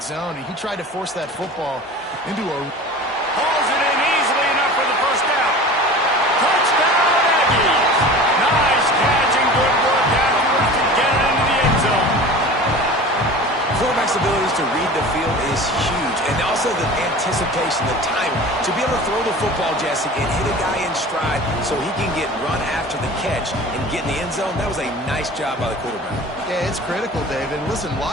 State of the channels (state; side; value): normal; both; correlation 0.38